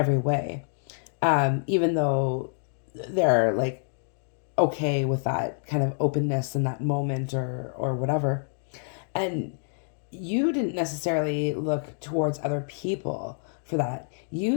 way. Even though they're like okay with that kind of openness in that moment or whatever. And you didn't necessarily look towards other people for that.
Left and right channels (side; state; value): right; silent; digital silence